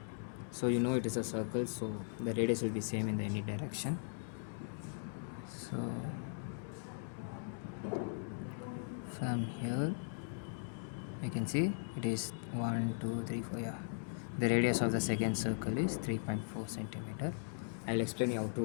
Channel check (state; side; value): silent; right; digital silence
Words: so you know it is a circle, so the radius will be same in any direction. So from here you can see it is 1 2 3 4. Yeah, the radius of the second circle is 3.4 centimeter. I'll explain you how to